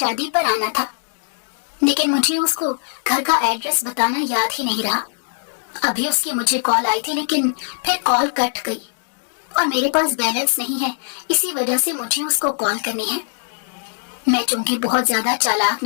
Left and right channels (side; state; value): right; silent; 65 dB below the other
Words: پر آنا تھا، لیکن مجھے اس کو گھر کا ایڈریس بتانا یاد ہی نہیں رہا۔ ابھی اس کی مجھے کال آئی تھی لیکن پھر کال کٹ گئی، اور میرے پاس بیلنس نہیں ہے، اسی وجہ سے مجھے اس کو کال کرنی ہے۔ میں چونکہ بہت زیادہ چالاک